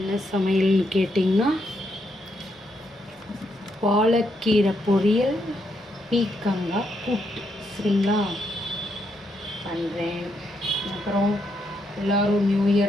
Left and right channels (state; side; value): normal; both; correlation 0.78